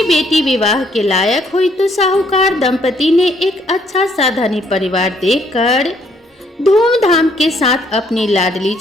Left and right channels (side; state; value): both; normal; correlation 0.68